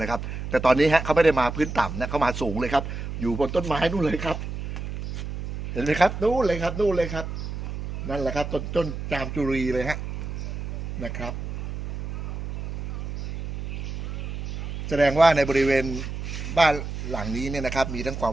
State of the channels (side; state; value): right; noise; hum, 6 dB below the sound